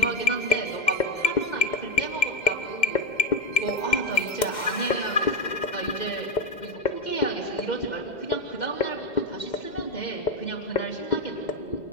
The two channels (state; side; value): late; right; 2.1 ms